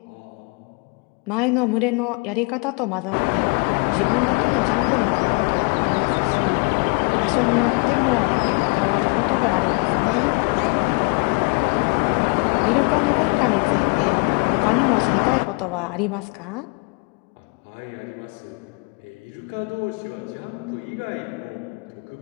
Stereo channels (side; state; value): right; quieter; 33.5 dB